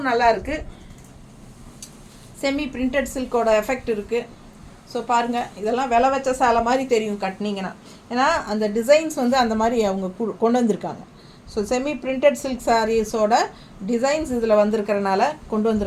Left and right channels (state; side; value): identical; both; correlation 1.00